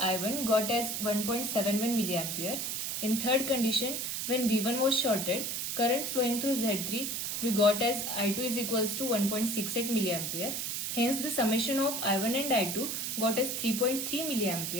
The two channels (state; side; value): noise; right; hiss, 2 dB below the sound